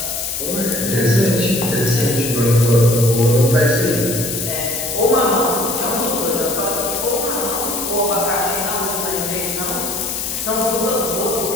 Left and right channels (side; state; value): left; noise; hiss, 6 dB below the sound